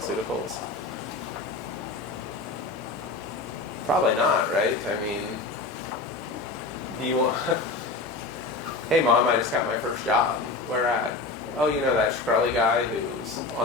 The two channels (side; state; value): right; quieter; 3.6 dB